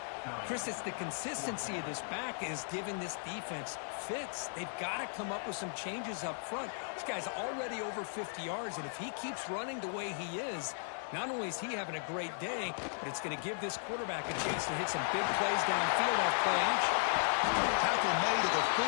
Chris, it's the consistency of this back is giving this defense fits. They've got to come up with some changes up front. This guy's already over 50 yards, and if he keeps running the way he is, not only is he having a great day, but it's going to give this quarterback a chance to hit some big plays downfield off play action. Tackle made at the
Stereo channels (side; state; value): right; silent; digital silence